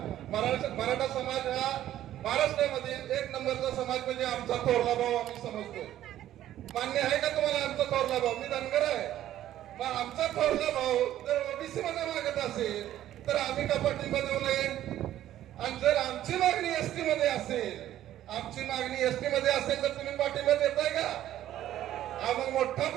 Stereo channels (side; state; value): left; quieter; 12.6 dB